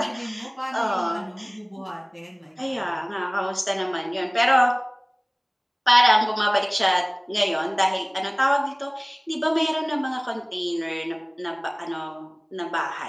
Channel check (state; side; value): identical; both; correlation 1.00